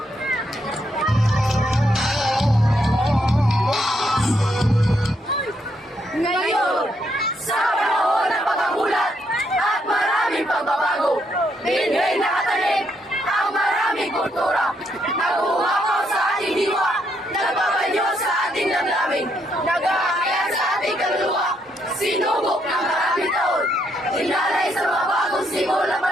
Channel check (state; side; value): normal; both; correlation 0.76